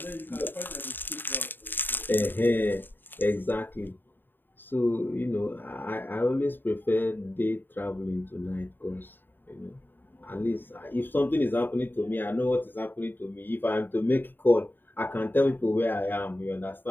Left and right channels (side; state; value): right; late; 0.094 ms